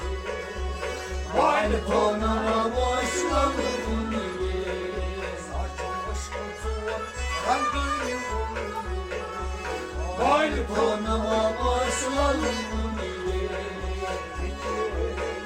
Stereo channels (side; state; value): both; identical; correlation 1.00